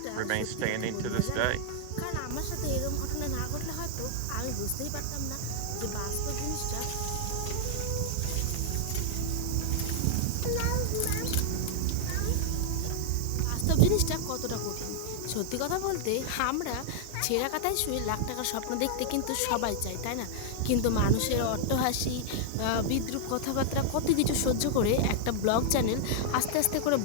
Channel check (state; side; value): different; both; correlation -0.01